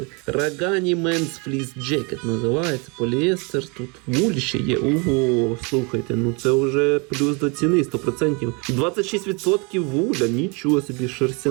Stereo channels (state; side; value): quieter; left; 31.4 dB